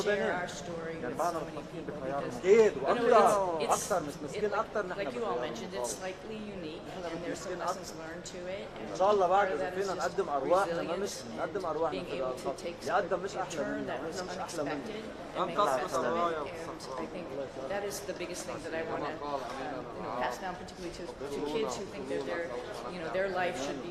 share our story with so many people, because it's like you all mentioned, it's slightly unique, and there's some lessons learned to it, and part of that is just resilience and being able to take a turn that was unexpected and make the best of it. And I think that is the biggest thing that I want to pass down, particularly to kids who think that their life should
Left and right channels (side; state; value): both; identical; correlation 1.00